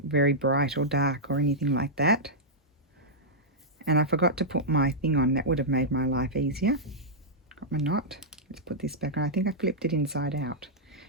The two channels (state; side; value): normal; both; correlation -0.09